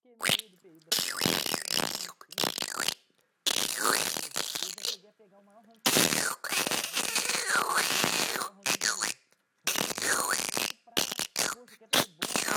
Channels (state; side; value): identical; both; correlation 1.00